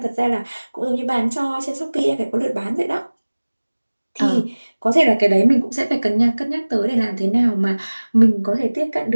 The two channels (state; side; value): inverted; both; correlation -1.00